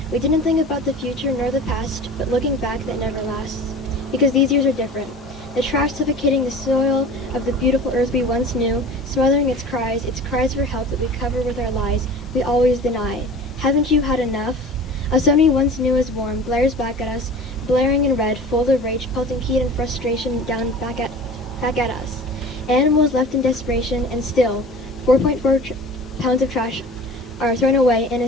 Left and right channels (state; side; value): normal; both; correlation 0.39